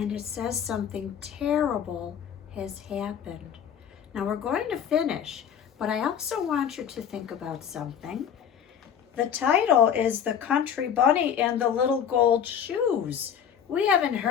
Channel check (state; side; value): quieter; right; 8.4 dB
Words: it says something terrible has happened. Now we're going to finish, but I also want you to think about something. The title is The Country Bunny and the Little Gold Shoes. We haven't